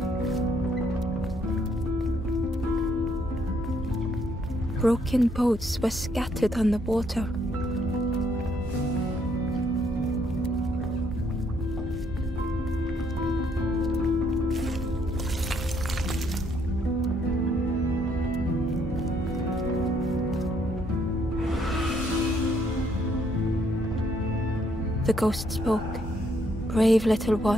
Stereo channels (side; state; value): both; normal; correlation 0.70